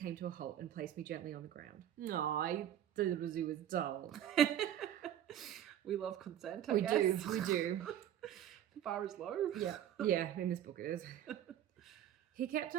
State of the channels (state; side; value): quieter; left; 10.9 dB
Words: to a halt and placed me gently on the ground. No, I thought it was dull. We love consent, I guess. We do. The bar is low. Yeah, in this book it is. He kept